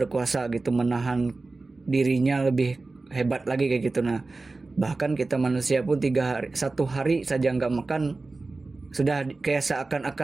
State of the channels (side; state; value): left; quieter; 3.5 dB